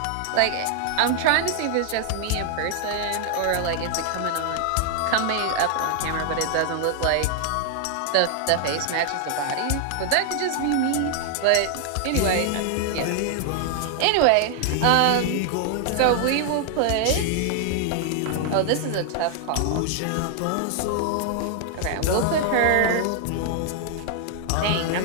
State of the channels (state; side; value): different; both; correlation 0.00